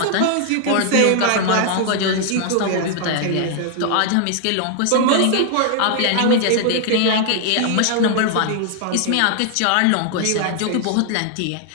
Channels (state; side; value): different; both; correlation 0.00